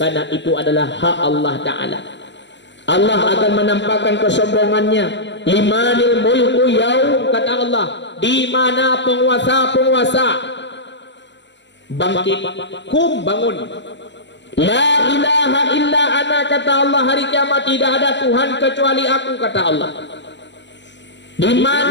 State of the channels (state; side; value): late; right; 0.52 ms